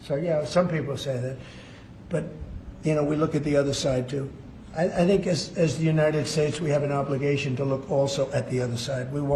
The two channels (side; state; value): both; identical; correlation 1.00